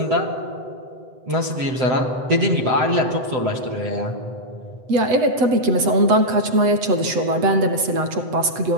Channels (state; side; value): late; left; 7.9 ms